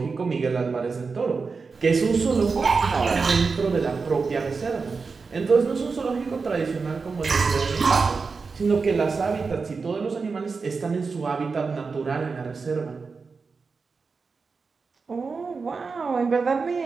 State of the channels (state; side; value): quieter; left; 4.7 dB